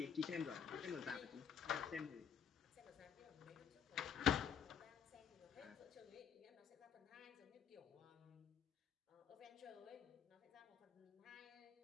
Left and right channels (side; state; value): right; quieter; 7.8 dB